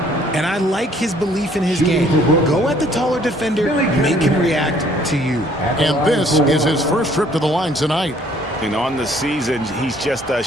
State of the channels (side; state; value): both; normal; correlation 0.60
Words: And I like his belief in his game. Go at the taller defender, make him react to you. And this is his first trip to the line tonight. And on the season, he's just a